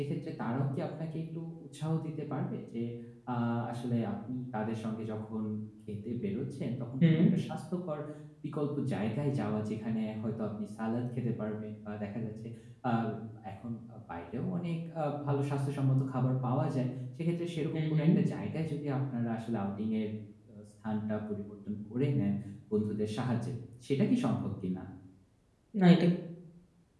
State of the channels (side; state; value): both; identical; correlation 1.00